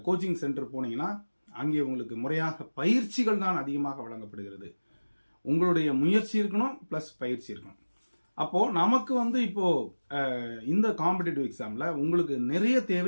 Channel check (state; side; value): inverted; both; correlation -1.00